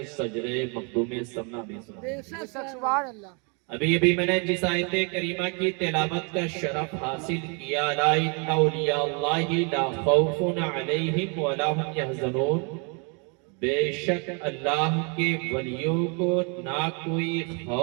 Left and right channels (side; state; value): left; quieter; 35.0 dB